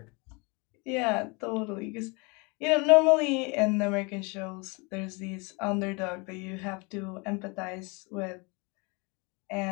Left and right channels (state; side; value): quieter; right; 29.9 dB